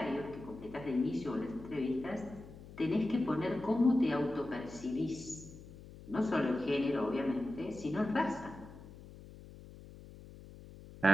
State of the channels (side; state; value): left; noise; hum, 17 dB below the sound